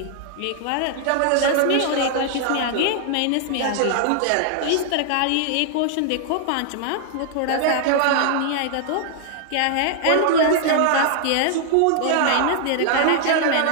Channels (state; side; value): different; both; correlation 0.00